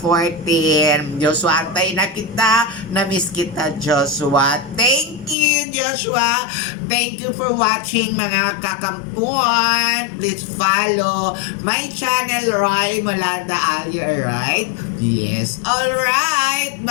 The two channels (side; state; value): right; drops out; at 5.4 s